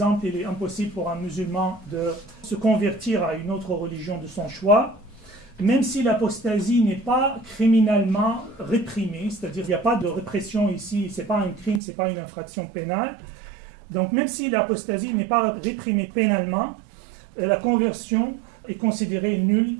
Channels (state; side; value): drops out; left; at 11.8 s